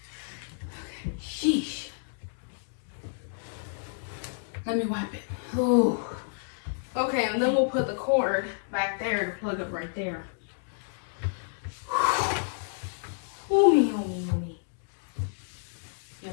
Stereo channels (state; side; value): silent; right; digital silence